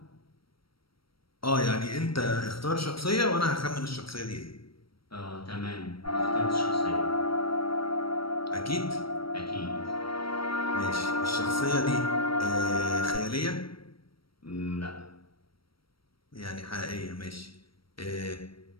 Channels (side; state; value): right; late; 0.75 ms